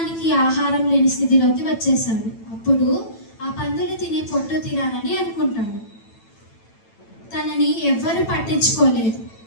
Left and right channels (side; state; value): right; late; 9.0 ms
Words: ఆహారం లేని స్థితిలోకి వచ్చేసాడు. అప్పుడు ఆ పందులు తినే పొట్టు తినాలని అనుకుంటాడు. తనని ఎవ్వరు పట్టించుకోలేదు.